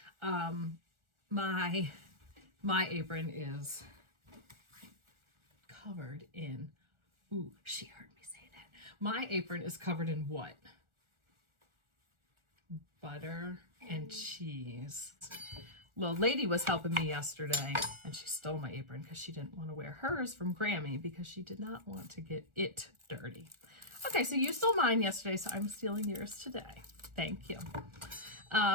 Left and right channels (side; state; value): left; late; 1.4 ms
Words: My apron is covered in, ooh, she heard me say that. My apron is covered in what? Butter and cheese. Little lady was helping me yesterday and she stole my apron because she didn't want to wear hers from Grammy because she did not want to get it dirty. Okay, so you stole mine yesterday, so I'm stealing yours today. Thank you.